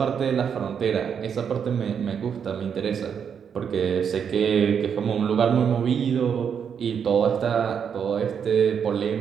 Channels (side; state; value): left; quieter; 7.4 dB